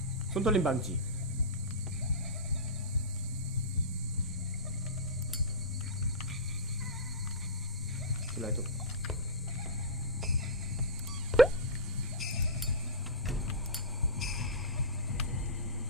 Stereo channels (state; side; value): normal; both; correlation -0.10